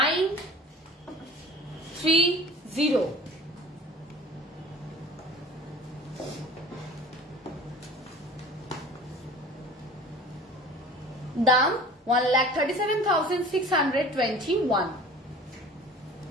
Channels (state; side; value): normal; both; correlation 0.42